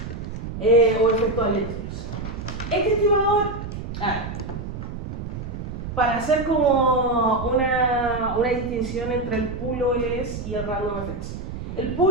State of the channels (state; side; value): noise; right; rumble, 7 dB below the sound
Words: O efectos aleatorios. Este estimador, para hacer como una distinción entre el pool OLS y el random effects. El